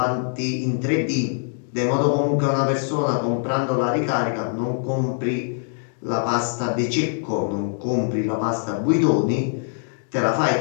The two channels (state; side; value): silent; right; digital silence